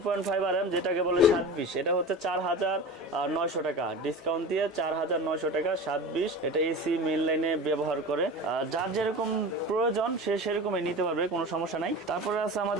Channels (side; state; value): both; normal; correlation 0.32